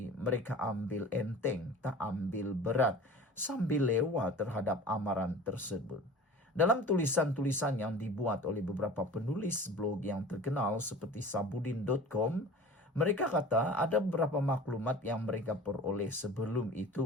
mereka ambil enteng, tak ambil berat, sambil lewat terhadap amaran tersebut. Dalam tulisan-tulisan yang dibuat oleh beberapa penulis blog yang terkenal seperti sabudin.com, mereka kata ada beberapa maklumat yang mereka peroleh sebelum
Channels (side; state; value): both; normal; correlation 0.40